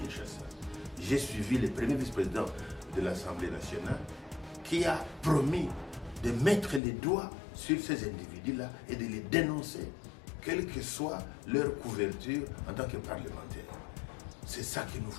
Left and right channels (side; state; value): right; drops out; at 6.8 s